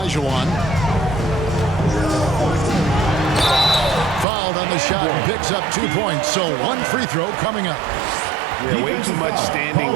Fouled on the shot and picks up 2 points. So 1 free throw coming up. Yeah, way too much standing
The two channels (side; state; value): left; drops out; at 4.2 s